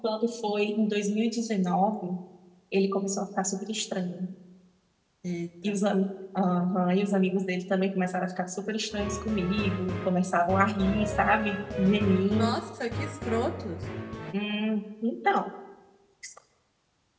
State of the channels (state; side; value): identical; both; correlation 1.00